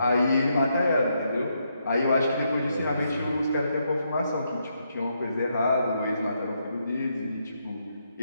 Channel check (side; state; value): both; inverted; correlation -0.79